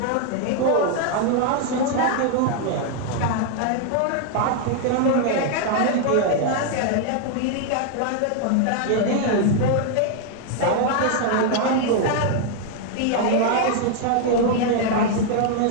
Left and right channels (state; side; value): different; both; correlation 0.00